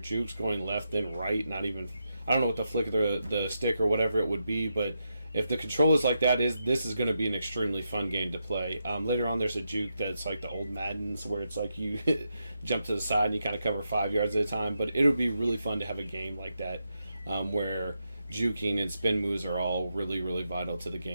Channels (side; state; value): both; inverted; correlation -0.84